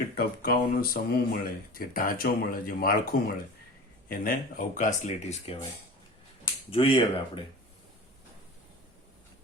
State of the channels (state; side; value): normal; both; correlation 0.36